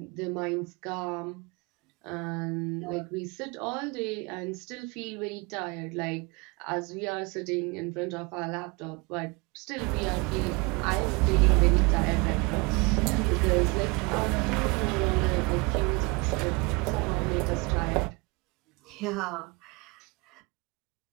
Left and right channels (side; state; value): left; quieter; 28.1 dB